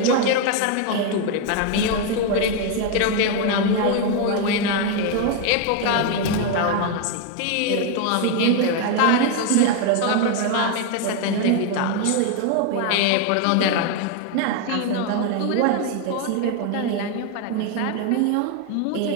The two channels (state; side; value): different; both; correlation 0.01